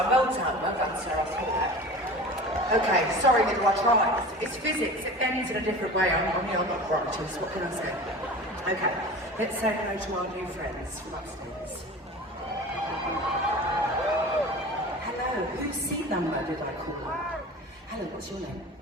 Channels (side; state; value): both; normal; correlation 0.36